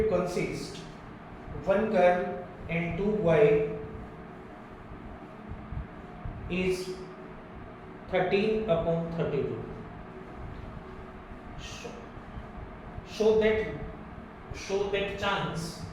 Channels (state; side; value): identical; both; correlation 1.00